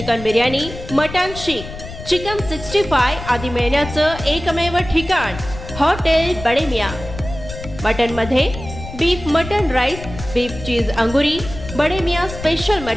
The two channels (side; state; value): left; noise; rumble, 11 dB below the sound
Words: biryani, mutton seekh, chicken 65 आदी मिळण्याचं एकमेव ठिकाण हॉटेल बडे मियां। मटन मध्ये beef mutton rice, beef cheese angoori, Bade Miyan special